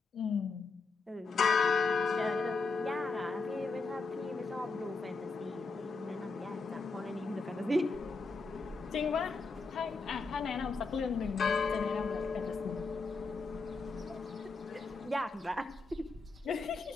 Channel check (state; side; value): quieter; right; 4.1 dB